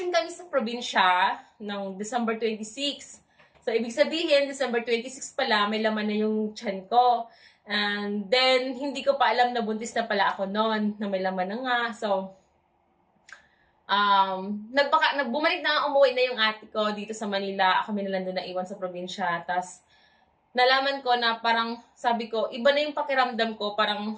kami sa probinsya ng December 26. So, ibig sabihin, December 26 pala, may laman na yung tiyan ko. And then, hindi ko pa alam na buntis na pala ako noon, na may laman na nga. So, bumalik na, umuwi na yung ate ko dito sa Manila. Kami na lang doon naiwan sa probinsya. Tapos, nalaman ko na parang, sabi ko, iba na yung pakiramdam ko, parang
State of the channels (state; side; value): identical; both; correlation 1.00